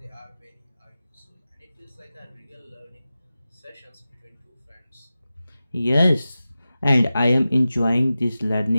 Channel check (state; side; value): inverted; both; correlation -0.95